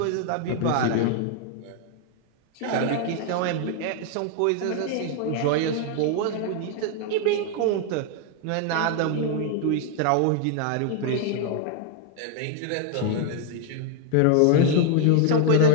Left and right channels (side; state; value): both; different; correlation 0.00